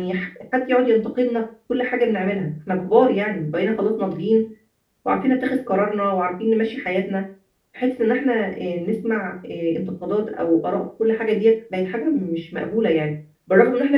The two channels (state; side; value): identical; both; correlation 1.00